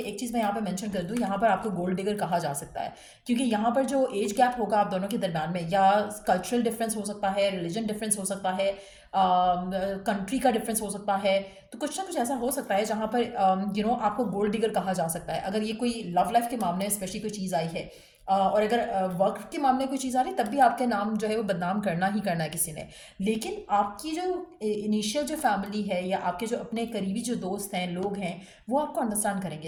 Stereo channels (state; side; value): identical; both; correlation 1.00